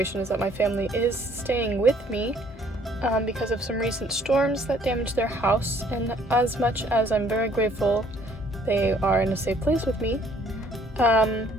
is that my family is staying with me because of some recent storms that damaged their house, and as much as I'm very grateful they are in a safe place with me, I'm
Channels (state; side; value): normal; both; correlation 0.61